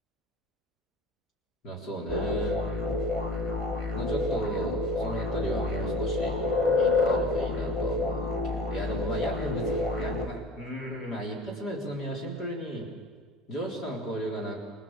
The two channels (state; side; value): normal; both; correlation 0.40